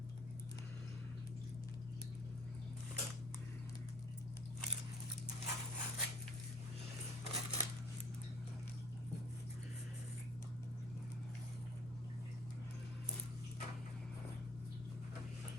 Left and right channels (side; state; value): both; normal; correlation 0.54